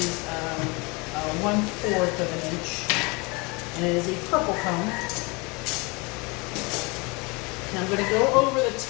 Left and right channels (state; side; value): quieter; right; 27.9 dB